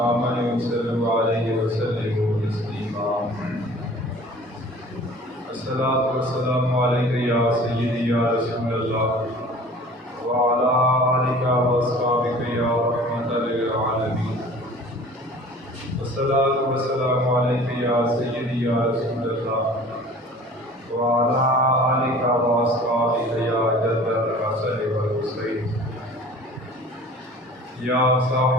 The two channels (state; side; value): normal; both; correlation 0.46